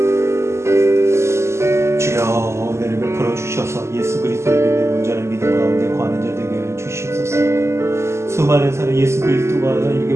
주여, 은혜를 베풀어 주셔서 예수 그리스도를 믿는 온전한 믿음 가운데 거하는 자 되게 주시옵소서. 수많은 사람, 예수 그리스도가 이렇게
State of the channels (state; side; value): late; left; 0.13 ms